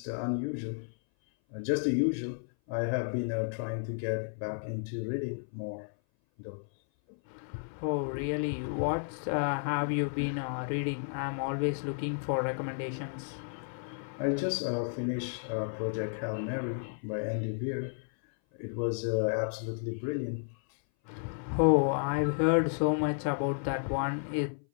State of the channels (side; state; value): right; silent; 56 dB below the other